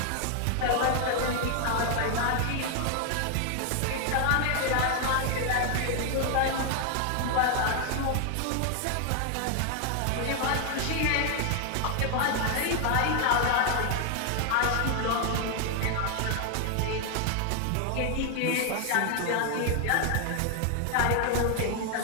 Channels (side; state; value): both; different; correlation 0.00